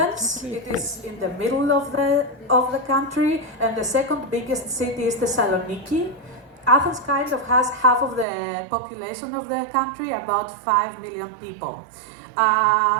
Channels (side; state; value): left; drops out; at 8.2 s